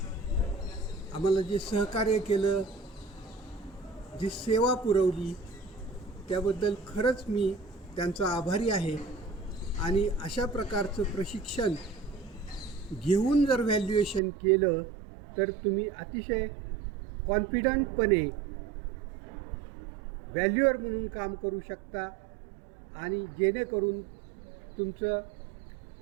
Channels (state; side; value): drops out; left; at 14.2 s